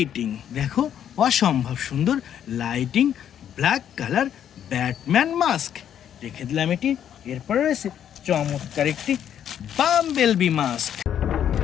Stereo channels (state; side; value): quieter; right; 9.7 dB